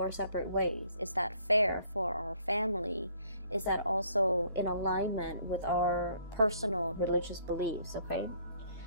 separate ways? Is that fair for our family? Is that also in alignment with our personal religious beliefs, okay?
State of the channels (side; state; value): both; inverted; correlation -0.62